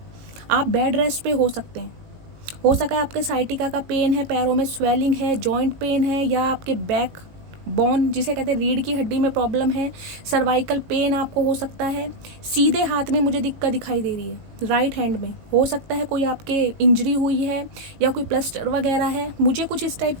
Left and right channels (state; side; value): late; left; 18 ms